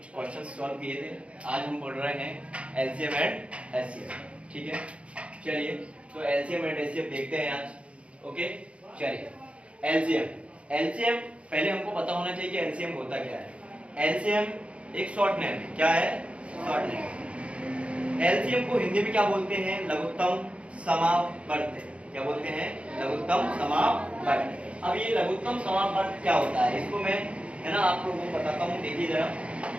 क्वेश्चन सॉल्व किए थे। आज हम पढ़ रहे हैं एलसीएम एंड एचसीएफ। ठीक है, चलिए तो एलसीएम एंड एचसीएफ देखते हैं आज। ओके, चलिए एलसीएम एलसीएम पहले हमको पता होना चाहिए कि एलसीएम होता क्या है। एलसीएम एक शॉर्ट नेम है। क्या है? Short name. एलसीएम को हिंदी में क्या बोलते हैं? लघुत्तम समावर्त। क्या बोलते हैं? लघुत्तम समावर्त। अब ये लघुत्तम समावर्त क्या होता है, इसको मैं है ना आप लोगों को बताता हूँ। देखिए जरा,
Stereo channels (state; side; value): late; left; 0.061 ms